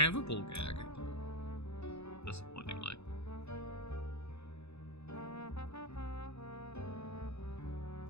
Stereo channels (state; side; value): late; right; 0.80 ms